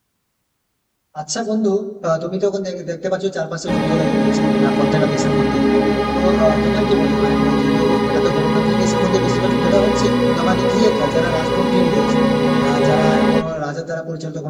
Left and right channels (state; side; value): identical; both; correlation 1.00